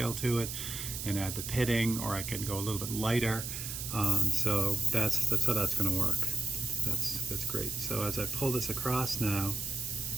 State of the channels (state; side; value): noise; right; hiss, 6 dB below the sound